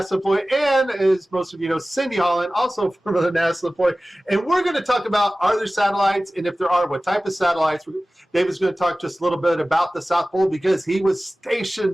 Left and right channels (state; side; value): normal; both; correlation 0.97